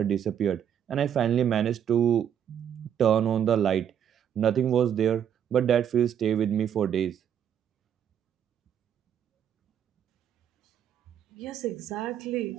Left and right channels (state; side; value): quieter; left; 9.2 dB